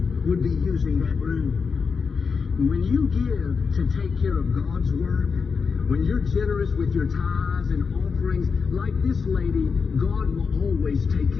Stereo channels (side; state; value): right; quieter; 5.4 dB